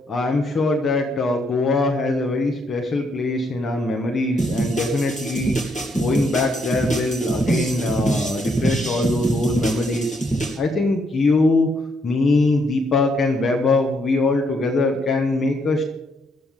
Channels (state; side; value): normal; both; correlation 0.74